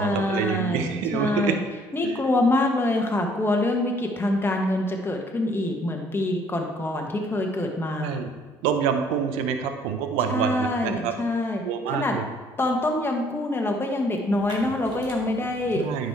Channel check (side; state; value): both; normal; correlation 0.61